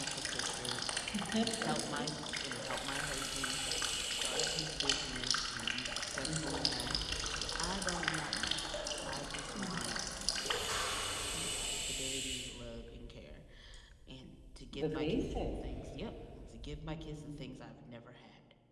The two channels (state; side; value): identical; both; correlation 1.00